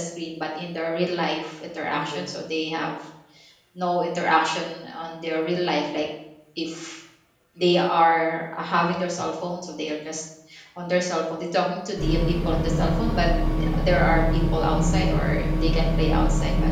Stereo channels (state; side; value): identical; both; correlation 1.00